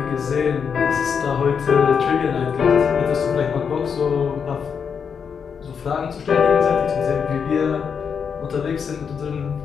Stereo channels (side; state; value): right; quieter; 6.6 dB